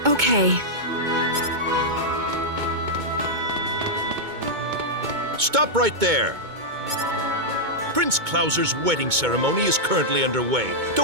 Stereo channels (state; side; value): late; left; 2.2 ms